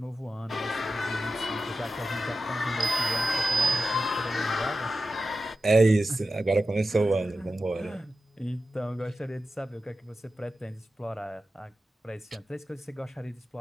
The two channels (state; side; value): normal; both; correlation 0.91